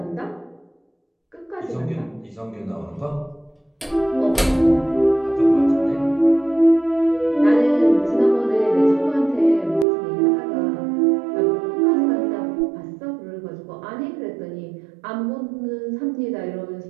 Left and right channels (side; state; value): left; drops out; at 9.9 s